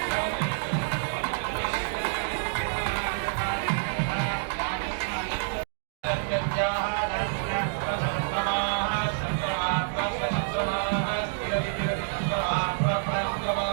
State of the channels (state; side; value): silent; left; digital silence